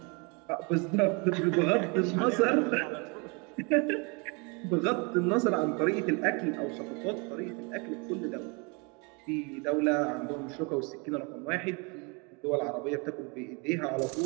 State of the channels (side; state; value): left; quieter; 31.7 dB